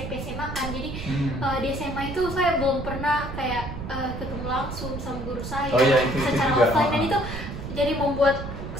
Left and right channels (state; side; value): noise; right; rumble, 7 dB below the sound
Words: SMA kan, jadi di SMA itu saya belum pernah kayak ketemu langsung sama guru saya secara offline, dan itu jadi membuat